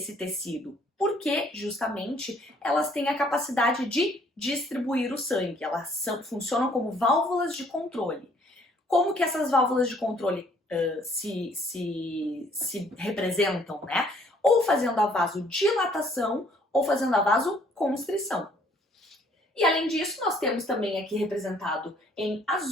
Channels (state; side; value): normal; both; correlation 0.62